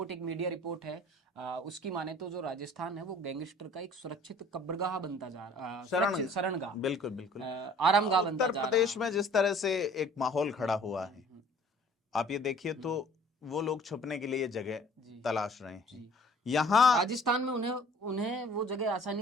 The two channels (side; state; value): both; normal; correlation 0.51